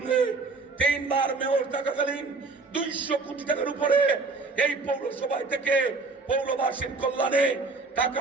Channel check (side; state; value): left; quieter; 3.9 dB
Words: 3 বার মেয়র থাকাকালীন 200 কোটি টাকার উপরে এই পৌরসভায় থেকে পৌরবাসীর কল্যাণে